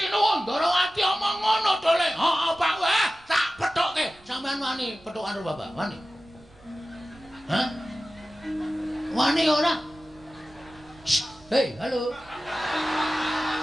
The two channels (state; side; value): noise; right; rumble, 26 dB below the sound